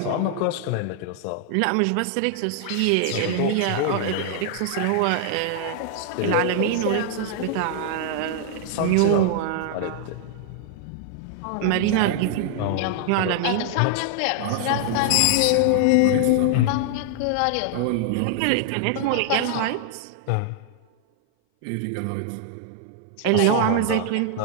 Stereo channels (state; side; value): different; both; correlation 0.00